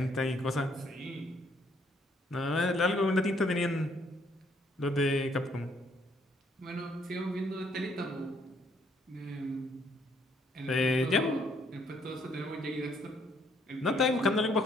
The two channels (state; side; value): normal; both; correlation 0.68